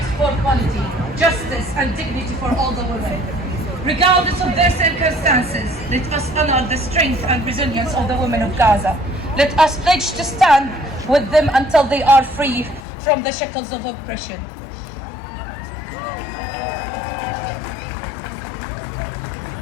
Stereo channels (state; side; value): drops out; right; at 12.8 s